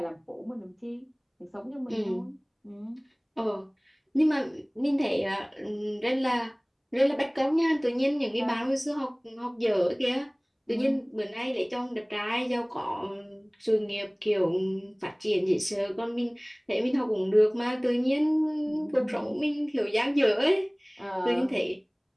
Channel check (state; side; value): identical; both; correlation 1.00